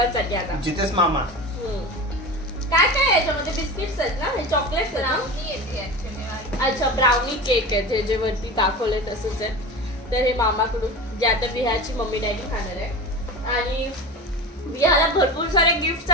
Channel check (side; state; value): both; normal; correlation 0.30